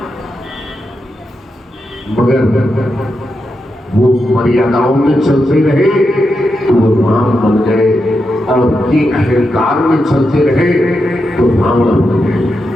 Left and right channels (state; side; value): normal; both; correlation 0.86